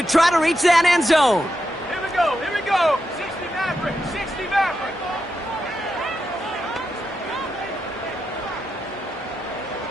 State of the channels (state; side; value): normal; both; correlation 0.86